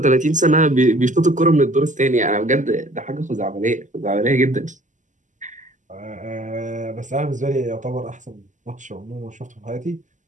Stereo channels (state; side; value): late; left; 0.36 ms